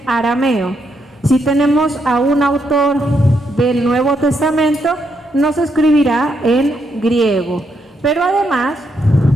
arameo. Si tenemos a un autor del Nuevo Testamento, nos escribirá en griego. Pero además,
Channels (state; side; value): normal; both; correlation 0.78